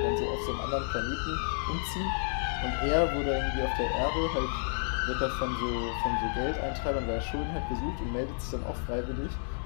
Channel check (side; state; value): right; silent; digital silence